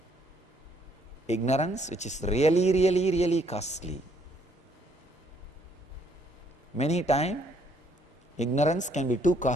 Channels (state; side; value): normal; both; correlation 0.67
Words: Ignorance which is really costly. Many times, ignorance can be too